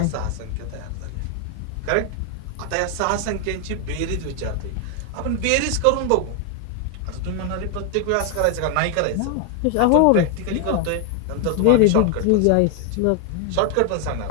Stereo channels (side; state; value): both; different; correlation 0.01